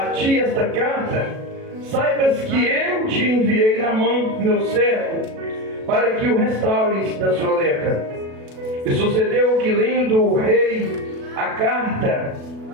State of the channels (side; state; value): left; late; 37 ms